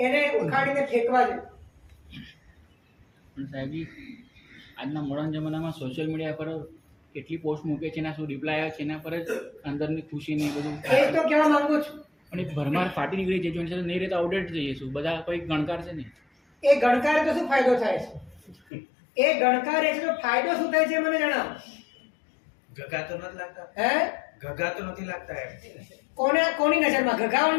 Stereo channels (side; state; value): right; drops out; at 18.6 s